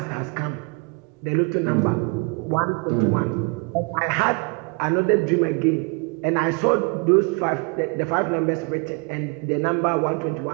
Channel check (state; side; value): quieter; left; 32.3 dB